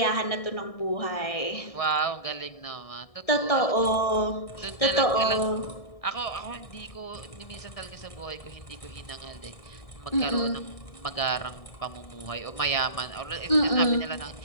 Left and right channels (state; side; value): late; right; 1.6 ms